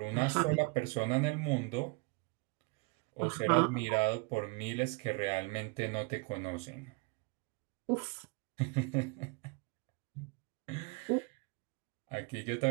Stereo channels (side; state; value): left; quieter; 29.6 dB